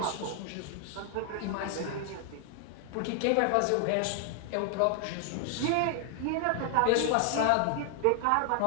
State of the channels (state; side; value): different; both; correlation 0.00